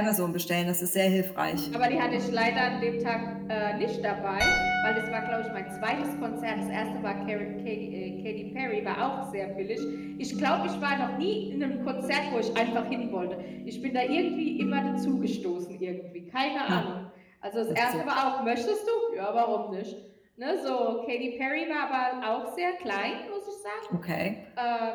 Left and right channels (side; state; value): both; identical; correlation 1.00